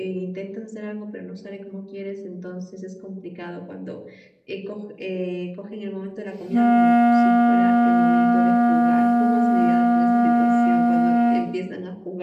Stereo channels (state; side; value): identical; both; correlation 1.00